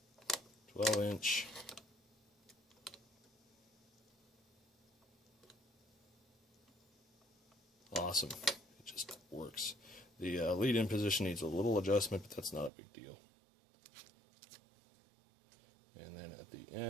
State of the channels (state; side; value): drops out; left; at 12.7 s